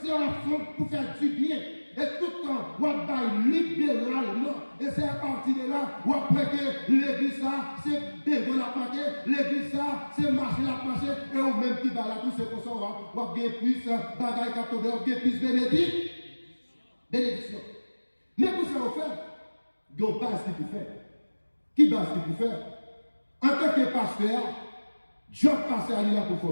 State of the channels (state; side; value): inverted; both; correlation -1.00